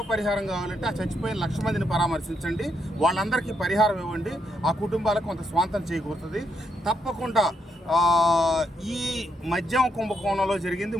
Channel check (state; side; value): normal; both; correlation 0.78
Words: పరిహారం కావాలంటే ఆ చచ్చిపోయిన 1,00,000 మందిని పరామర్శించండి, వాళ్ళందరికీ పరిహారం ఇవ్వండి, ఆ కుటుంబాలకు కొంత స్వాంతం చేకూరుతుంది. తప్పకుండా ఈ మద్యం కుంభకోణంలో జరిగింది